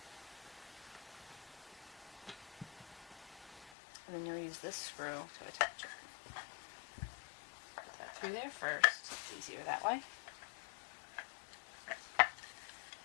And then you'll use this screw to attach it. Put that through there first. It's easier that way.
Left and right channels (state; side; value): drops out; right; at 3.7 s